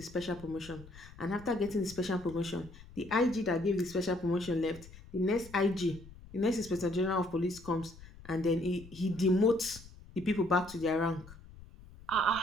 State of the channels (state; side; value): noise; left; rumble, 19 dB below the sound